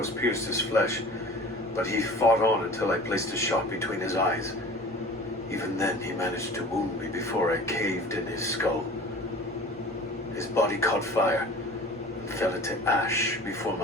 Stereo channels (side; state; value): both; normal; correlation 0.42